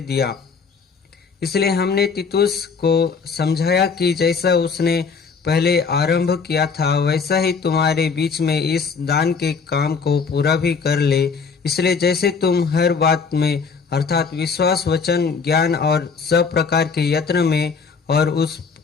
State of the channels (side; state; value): right; quieter; 5.3 dB